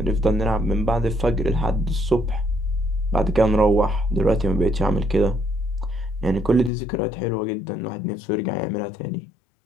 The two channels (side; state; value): right; drops out; at 6.7 s